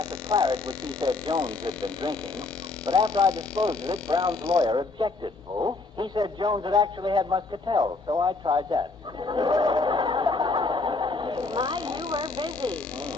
of claret, which he said Jones had been drinking. But after I disposed of it, Brown's lawyer objected. Oh? He said Jones had actually had muscatel, so I tried that. My, you were busy.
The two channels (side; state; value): right; quieter; 3.6 dB